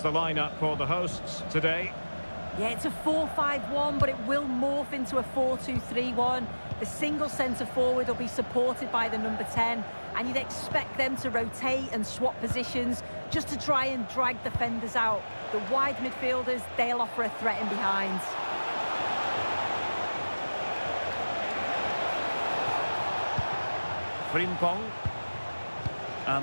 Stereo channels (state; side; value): inverted; both; correlation -1.00